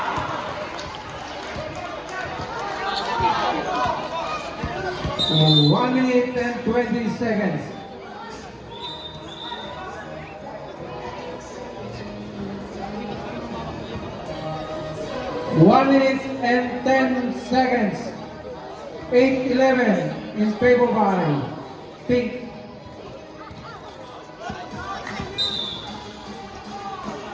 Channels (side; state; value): both; identical; correlation 1.00